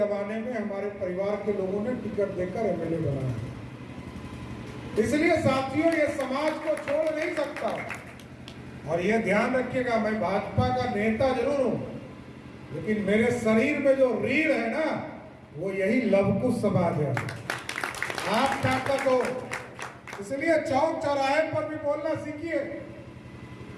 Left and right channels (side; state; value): both; identical; correlation 1.00